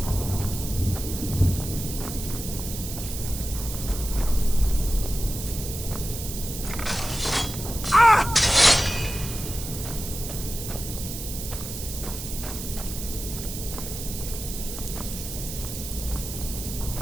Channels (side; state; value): right; noise; hiss, 8 dB below the sound